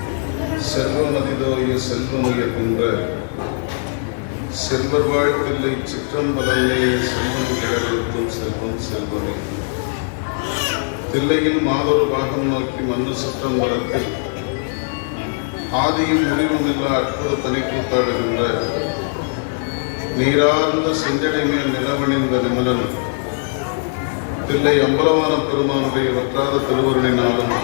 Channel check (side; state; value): right; silent; digital silence